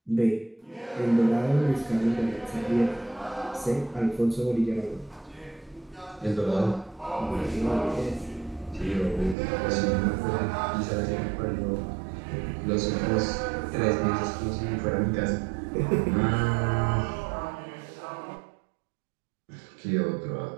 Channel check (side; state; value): left; drops out; at 9.3 s